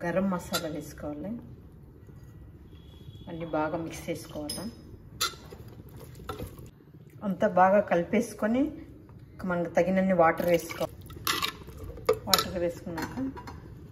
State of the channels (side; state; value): both; identical; correlation 1.00